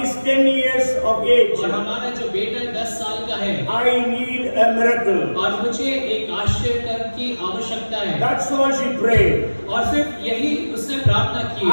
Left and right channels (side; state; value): both; inverted; correlation -1.00